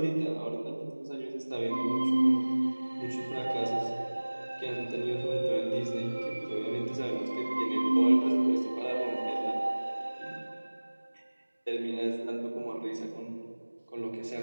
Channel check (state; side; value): inverted; both; correlation -1.00